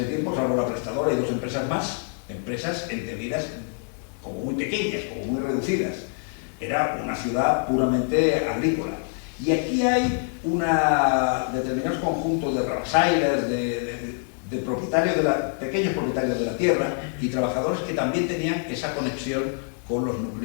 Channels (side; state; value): right; silent; 56 dB below the other